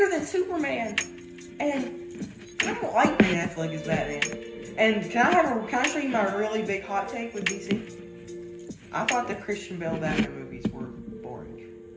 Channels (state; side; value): identical; both; correlation 1.00